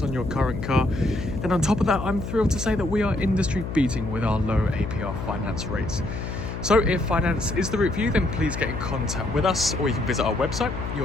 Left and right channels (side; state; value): left; noise; hum, 6 dB below the sound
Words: on your current car. And on top of that, I'm thrilled to say that we are industry beating with our low Apr finance rates. So if finance is the route for you, then please get in contact with us, or you can visit our website,